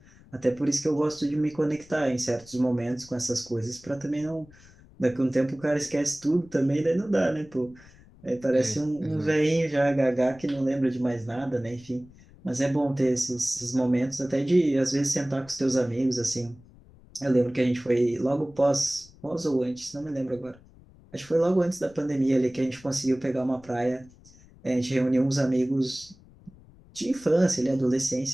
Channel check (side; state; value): left; noise; rumble, 24 dB below the sound